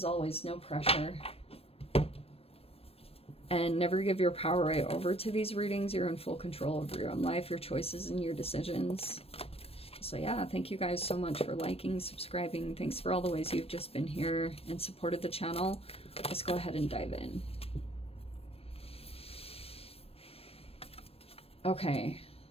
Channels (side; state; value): right; late; 0.28 ms